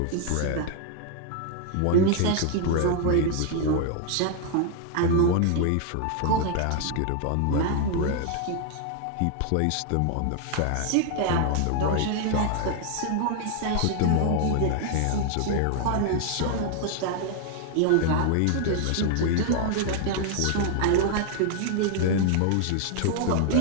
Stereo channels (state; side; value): different; both; correlation 0.00